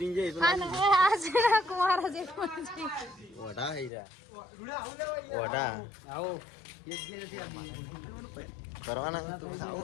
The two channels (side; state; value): right; drops out; at 3.9 s